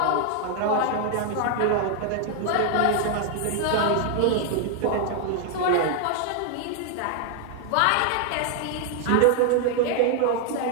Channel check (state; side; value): different; both; correlation 0.00